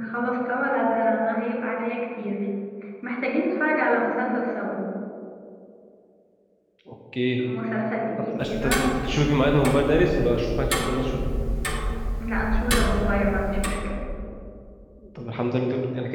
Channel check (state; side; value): identical; both; correlation 1.00